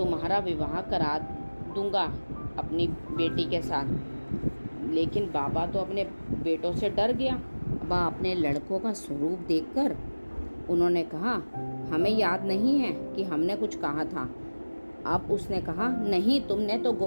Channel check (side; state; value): both; inverted; correlation -1.00